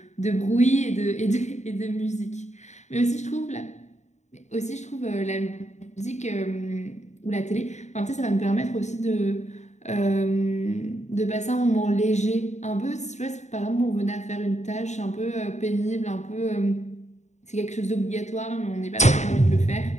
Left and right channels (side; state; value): right; late; 0.34 ms